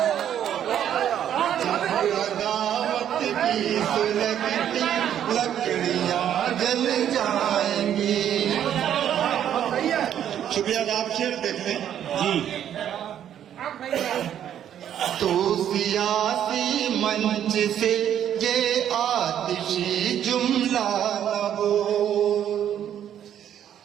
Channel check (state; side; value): quieter; left; 10.1 dB